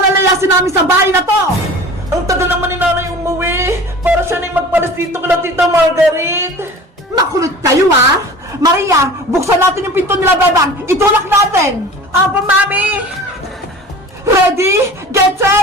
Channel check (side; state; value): both; normal; correlation 0.40